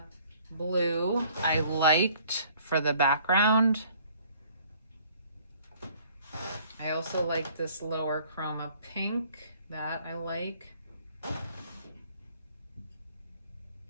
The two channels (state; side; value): inverted; both; correlation -0.57